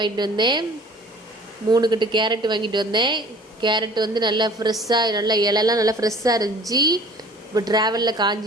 வந்தேன். 3 கட்டு கேரட் வாங்கிட்டு வந்தேன். கேரட் வந்து நல்லா ஃப்ரெஷ்ஷாக, நல்லா இலெல்லாம் நல்லா ஃப்ரெஷ்ஷாக இருந்துச்சு. இப்போ ட்ராவலில்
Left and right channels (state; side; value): normal; both; correlation 0.48